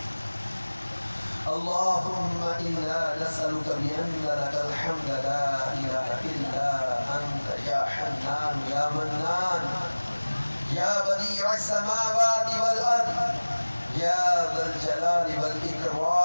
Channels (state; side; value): inverted; both; correlation -1.00